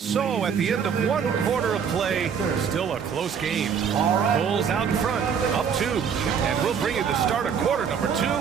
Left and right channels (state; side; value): quieter; left; 7.1 dB